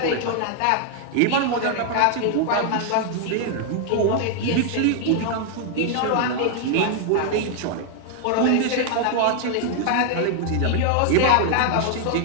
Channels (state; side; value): different; both; correlation 0.00